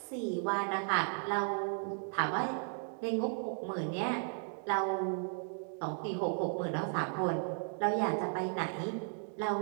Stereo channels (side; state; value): left; silent; 54 dB below the other